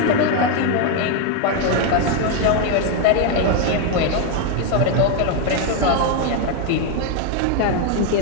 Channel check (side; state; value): both; different; correlation 0.01